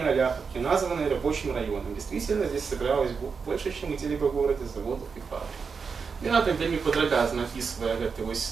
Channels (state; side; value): quieter; left; 5.5 dB